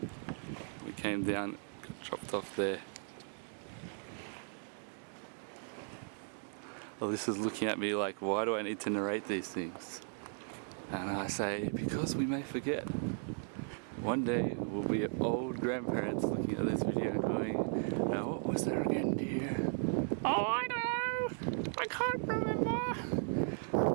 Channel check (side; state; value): left; silent; 53 dB below the other